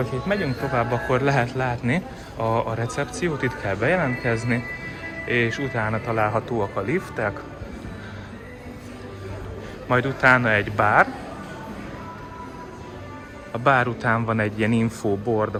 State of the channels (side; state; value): both; identical; correlation 1.00